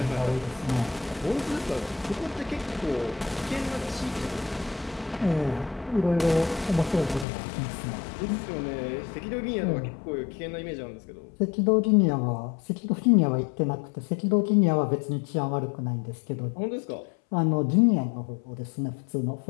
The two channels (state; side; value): drops out; right; at 7.2 s